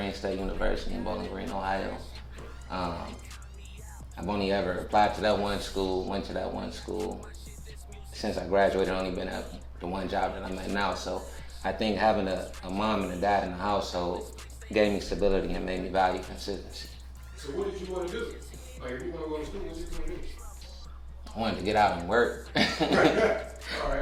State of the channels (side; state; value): both; identical; correlation 1.00